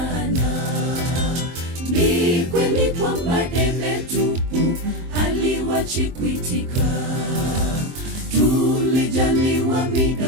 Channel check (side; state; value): left; late; 23 ms